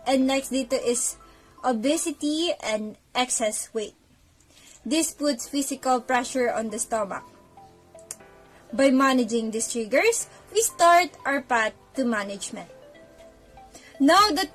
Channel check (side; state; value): both; identical; correlation 1.00